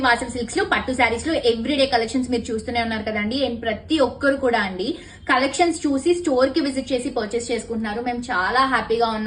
Vasavi silks లో పట్టు శారీస్ లో ఎవ్రీడే కలెక్షన్స్ మీరు చూస్తూనే ఉన్నారు కదండి. అండ్ ప్రతి ఒక్కరు కూడా అండి కలెక్షన్స్ చూసి స్టోర్ కి విజిట్ చేసి పర్చేస్ చేసుకుంటున్నారు. మేము చాలా హ్యాపీగా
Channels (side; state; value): both; identical; correlation 1.00